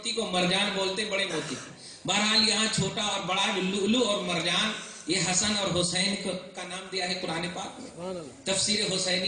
کو, مرجان بولتے ہیں بڑے موتی کو. بہرحال یہاں چھوٹا اور بڑا لؤلؤ اور مرجان یہ حسن اور حسین کا نام دیا ہے قرآن پاک میں. تفسیر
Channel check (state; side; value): identical; both; correlation 1.00